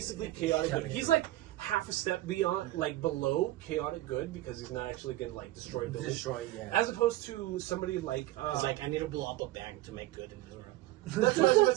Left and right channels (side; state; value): left; quieter; 16.5 dB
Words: chaotic good. He's like half a step beyond, like, below chaotic good, because he's not actually gonna, like, destroy buildings. As opposed to somebody like it's like, I need to blow up a bank to make good in this world. That's what I was going